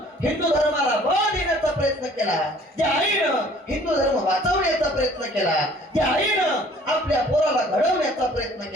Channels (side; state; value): both; normal; correlation 0.54